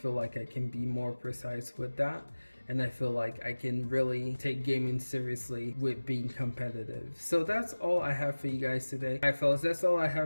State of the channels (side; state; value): both; inverted; correlation -1.00